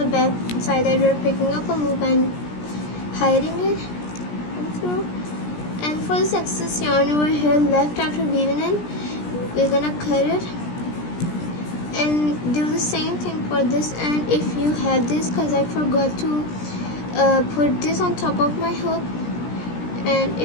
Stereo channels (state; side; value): late; right; 17 ms